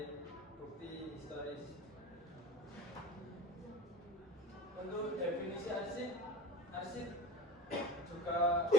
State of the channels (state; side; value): normal; both; correlation 0.33